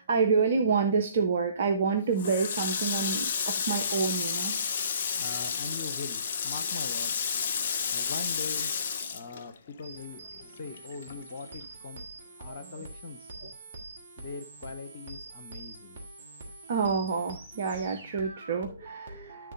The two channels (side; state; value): both; inverted; correlation -0.56